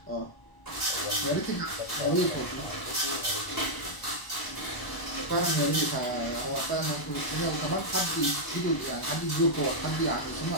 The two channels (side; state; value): right; late; 1.0 ms